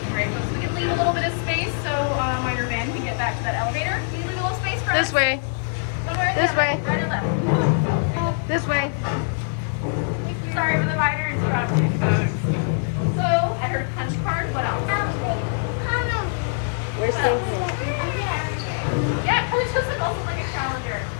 Great, folks. We can leave a little bit of space so your van can get back to that elevator. Will you leave a little space for us? This way. One way or the This other? way. Right or left? This way. Sorry for the minor interruption, folks. So, I heard punch card. What else? Where's What the else? Yeah, it just like also like a calendar.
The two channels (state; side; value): silent; right; digital silence